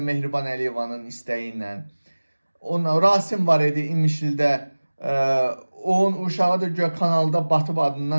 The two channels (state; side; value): inverted; both; correlation -1.00